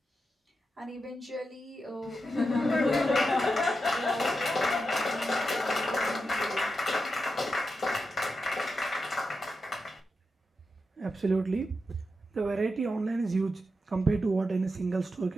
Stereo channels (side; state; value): both; normal; correlation 0.88